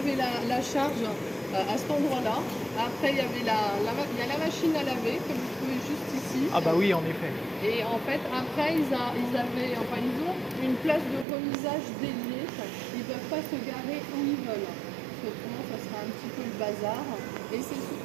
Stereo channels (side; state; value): left; drops out; at 11.2 s